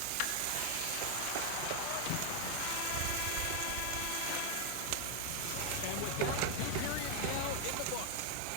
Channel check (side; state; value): both; different; correlation 0.00